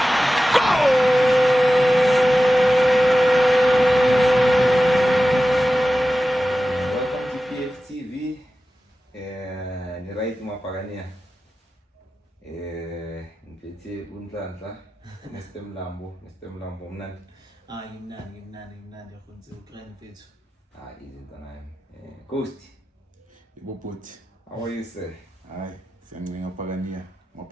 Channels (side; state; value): both; normal; correlation 0.94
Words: Unhlanhla Mr Mlambo mnandi ngimnandi yakhonze ukrani mfethu izinto nayo Ghost iboboti how are you sir hayi siyancenga